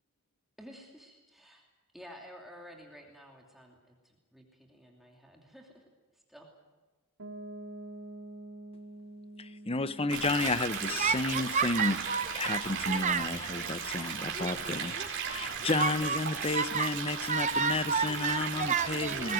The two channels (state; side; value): normal; both; correlation 0.08